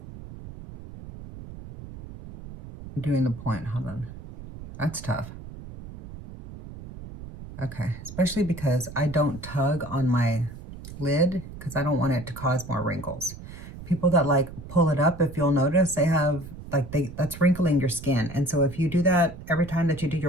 doing the point. Hold on. That's tough. Okay, especially because I don't tug on my lid because I don't want it to cause more wrinkles. People that like pull it up, if you'll notice, they have like that's wrinkling your skin. And so if you do that every time that you do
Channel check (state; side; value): noise; right; rumble, 14 dB below the sound